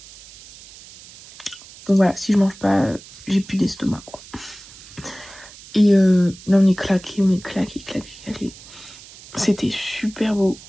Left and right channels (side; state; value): right; noise; hiss, 19 dB below the sound